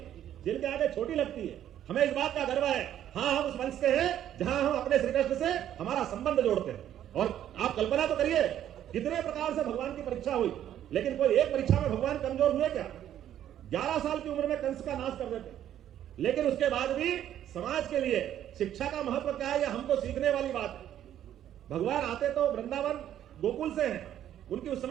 जिनके आगे छोटी लगती है, हमें इस बात का गर्व है। हाँ, हम उस वंश से हैं जहां हम अपने श्री कृष्ण से हमारा संबंध जोड़ते हैं। और आप कल्पना तो करिए कितने प्रकार से भगवान की परीक्षा हुई, लेकिन कोई एक परीक्षा में भगवान कमजोर हुए क्या? 11 साल की उम्र में कंस का नाश कर देते, लेकिन उसके बाद भी समाज के लिए शिक्षा का महत्व क्या है, यह हमको सीखने वाली बात है। भगवान आते तो वृंदावन गोकुल से हैं, उनकी उस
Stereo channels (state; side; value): quieter; left; 11.1 dB